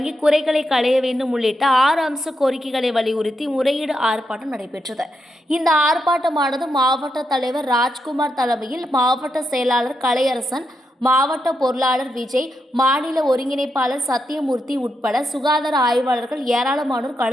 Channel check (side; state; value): both; normal; correlation 0.84